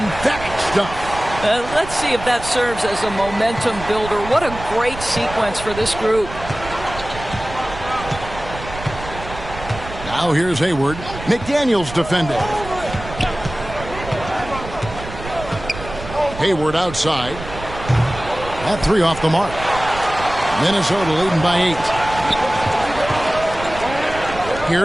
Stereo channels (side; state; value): right; noise; rumble, 12 dB below the sound